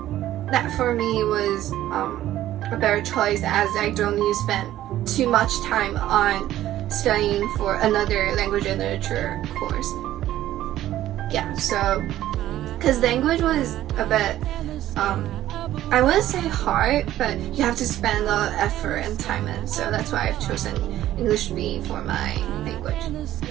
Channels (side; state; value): left; quieter; 13.5 dB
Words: that for me was a better choice, as I don't need to spend too much time on studying for another language and literature course. Yeah, so because language was a bit I wouldn't say hard, but you have to spend a lot of effort and time in, so that's why I've chosen English B for my language.